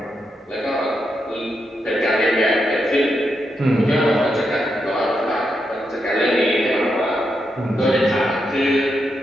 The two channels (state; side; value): normal; both; correlation 0.83